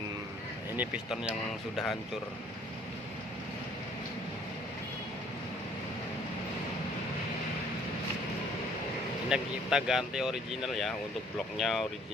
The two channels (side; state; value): both; normal; correlation 0.59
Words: ini piston yang sudah hancur. Ini kita ganti original ya. Untuk bloknya